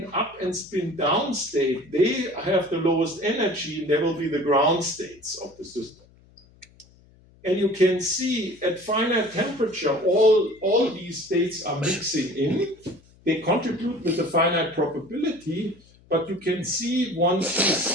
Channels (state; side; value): noise; left; hum, 28 dB below the sound